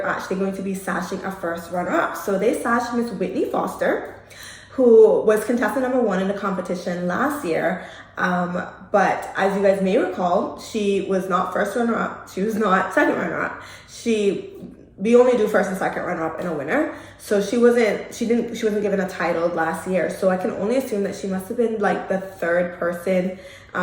actually going to be sashing a first runner-up. So they sashed Miss Whitney Foster, who was contestant number 1 in the competition last year. But as you guys may recall, she was not first runner-up. She was not second runner-up. We only do first and second runner-up and a winner. So she wasn't given a title last year. So I can only assume that she must have been like the third person,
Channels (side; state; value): both; identical; correlation 1.00